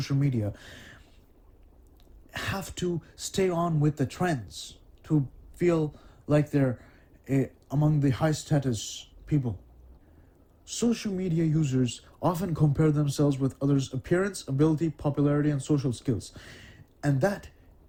media have to stay on with the trends to feel like they're among the high-status people. Social media users often compare themselves with others' appearance, ability, popularity, and social skills. And that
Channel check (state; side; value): identical; both; correlation 1.00